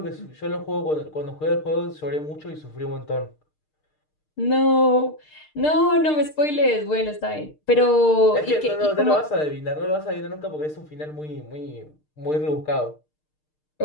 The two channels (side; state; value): right; late; 6.6 ms